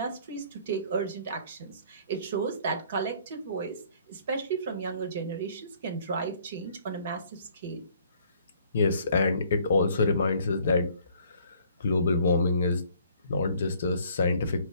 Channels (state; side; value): inverted; both; correlation -0.59